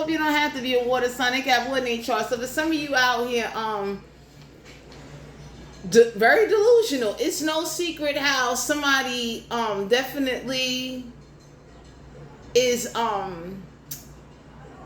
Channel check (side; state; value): both; identical; correlation 1.00